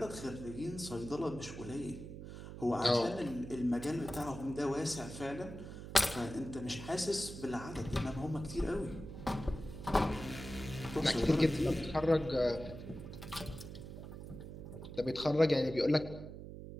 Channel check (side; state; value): right; noise; hum, 11 dB below the sound